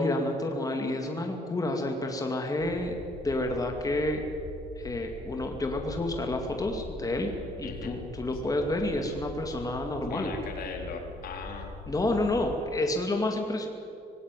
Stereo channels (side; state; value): both; normal; correlation 0.67